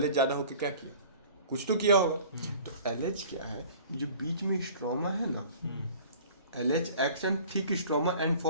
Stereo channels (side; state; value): both; inverted; correlation -0.47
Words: ज़्यादा होकर क्या किया, कुछ तो किया होगा। तो LH क्या है, जो बीच में स्ट्रोमा है ना, LH acts on thick stroma and